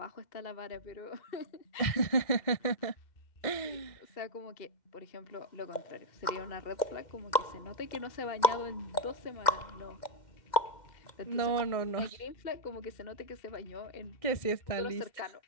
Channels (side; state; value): right; late; 2.1 ms